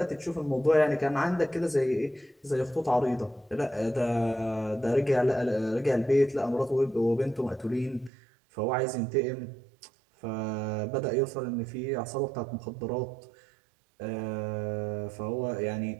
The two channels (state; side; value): drops out; left; at 8.1 s